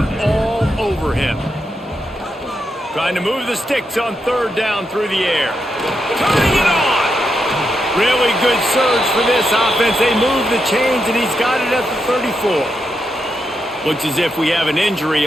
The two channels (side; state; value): both; normal; correlation 0.84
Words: all over him. Trying to move the sticks on 3rd down through the air. Turning it on! Really good surge for this offense. They move the chains, and he's got it at the 34. Looks as if we have an injury